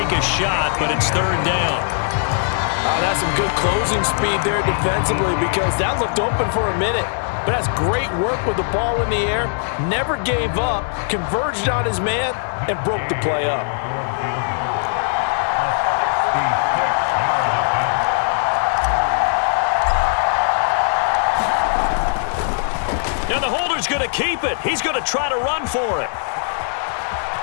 a shot, but it's 3rd down. That's some good closing speed there defensively because that looked open for a minute. but has great work with the ball in the air, never gave up, converged on his man, and broke the play up. Now the holder's going to keep it. He's going to try to run for it.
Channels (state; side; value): silent; right; digital silence